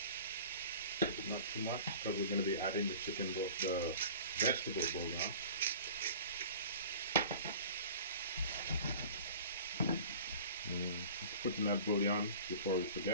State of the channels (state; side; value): inverted; both; correlation -0.42